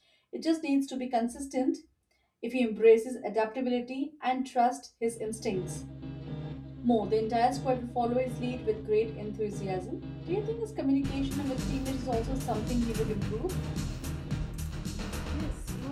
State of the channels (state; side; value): identical; both; correlation 1.00